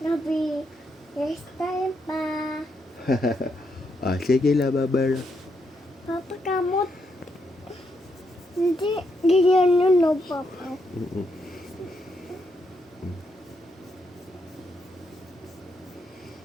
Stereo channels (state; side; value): normal; both; correlation 0.79